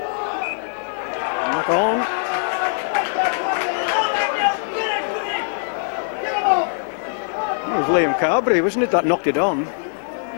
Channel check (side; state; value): right; silent; digital silence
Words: Knock on. It was Liam Carberry, wasn't it, that knocked it on?